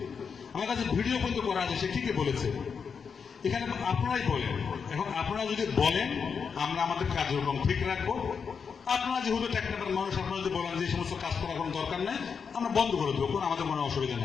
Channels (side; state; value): right; quieter; 6.1 dB